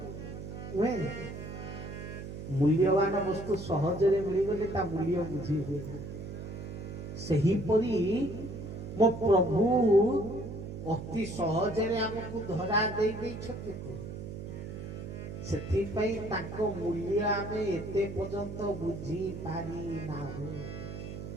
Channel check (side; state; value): right; noise; hum, 9 dB below the sound